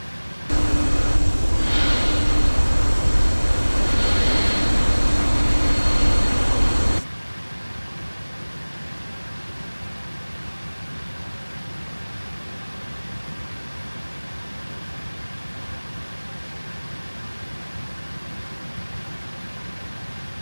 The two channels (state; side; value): inverted; both; correlation -1.00